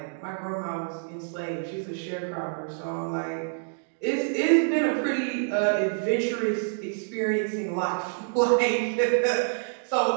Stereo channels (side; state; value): left; silent; digital silence